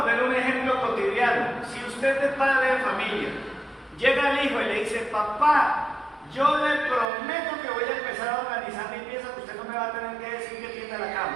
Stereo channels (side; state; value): left; drops out; at 7.1 s